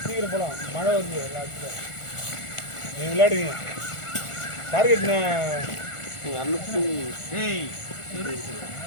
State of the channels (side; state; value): right; late; 1.4 ms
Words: சீக்கிரம் போகலாம். மழை வருது எல்லாத்துக்கும். நீங்கள் விளையாடுவீங்க. டார்கெட் ஏய்